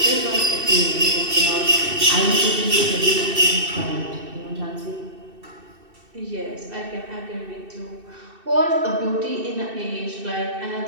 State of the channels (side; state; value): left; late; 2.6 ms